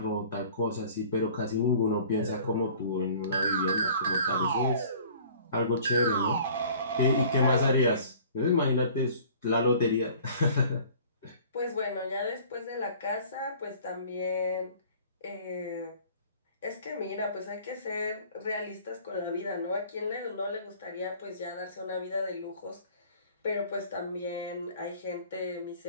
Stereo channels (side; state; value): both; inverted; correlation -0.49